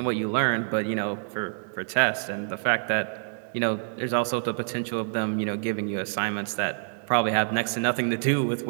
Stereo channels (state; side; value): silent; left; digital silence